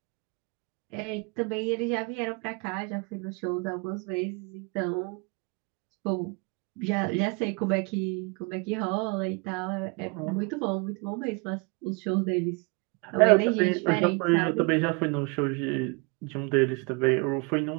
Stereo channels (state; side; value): quieter; left; 31.0 dB